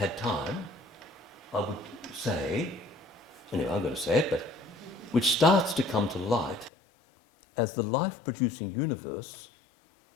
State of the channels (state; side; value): drops out; right; at 6.7 s